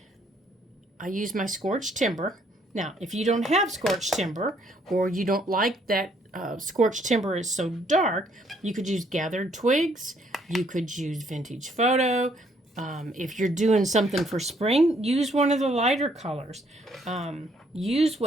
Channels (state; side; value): normal; both; correlation 0.67